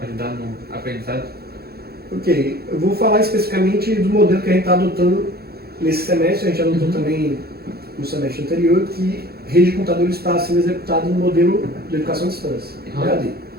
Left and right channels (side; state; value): left; late; 0.46 ms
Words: ajudar no aprendizado? Ok, eu vou falar especificamente do modelo que a gente está adotando nesse semestre, a gente adotou também no semestre anterior, que rede de computadores está sendo executado no modelo de educação à distância, EAD.